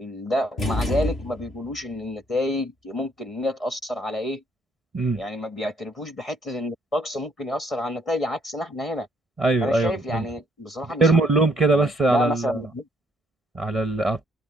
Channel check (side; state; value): both; normal; correlation 0.68